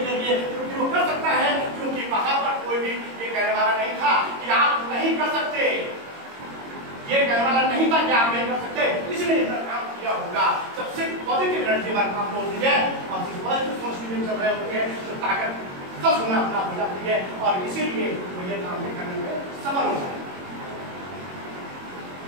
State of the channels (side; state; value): left; late; 22 ms